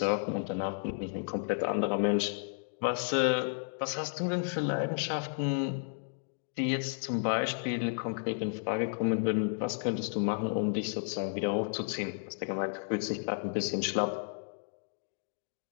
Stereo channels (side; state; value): right; silent; digital silence